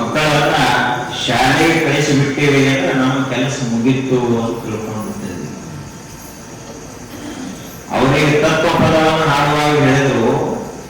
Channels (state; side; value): identical; both; correlation 1.00